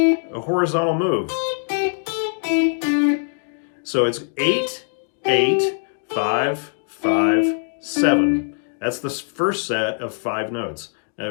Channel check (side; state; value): right; silent; digital silence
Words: horizontal move. So it's 8, 8, 5, 5, 7. That's the first set of 5 notes.